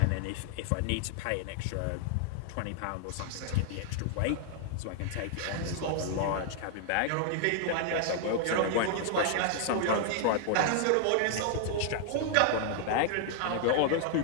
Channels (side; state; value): both; different; correlation 0.00